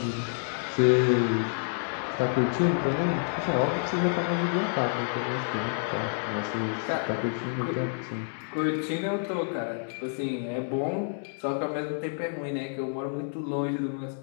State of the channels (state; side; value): silent; right; digital silence